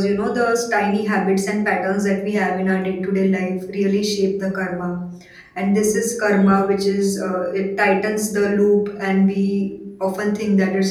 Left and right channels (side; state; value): both; identical; correlation 1.00